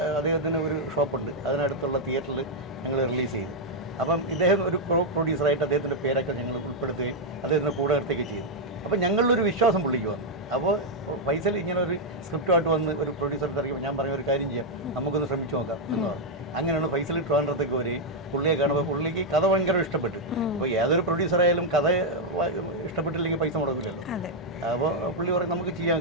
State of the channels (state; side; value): normal; both; correlation -0.02